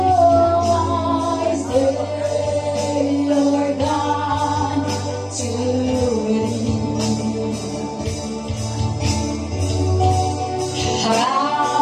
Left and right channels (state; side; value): identical; both; correlation 1.00